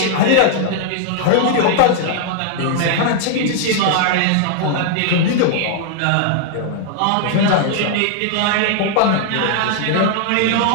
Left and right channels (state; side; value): different; both; correlation 0.00